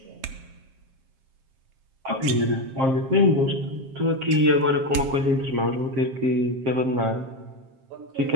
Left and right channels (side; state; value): left; late; 7.5 ms